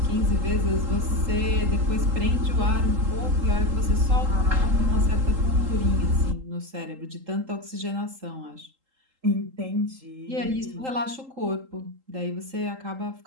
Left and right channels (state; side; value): late; left; 3.8 ms